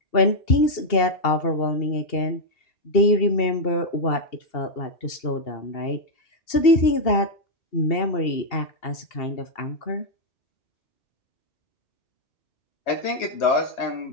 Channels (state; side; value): late; right; 2.8 ms